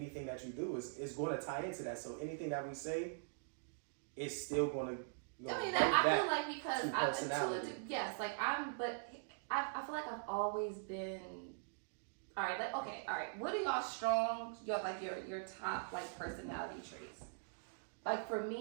that you do is going to tie into that. So anything that we say, it's still going to. I mean, I feel like, because I feel like I've always been. All right. What are y'all strong? Your top like personality traits. Like, for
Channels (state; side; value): silent; left; digital silence